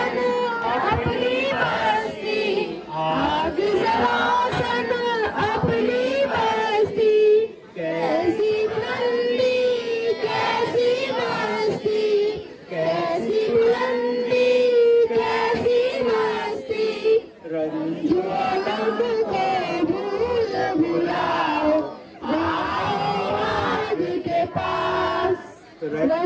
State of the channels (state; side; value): identical; both; correlation 1.00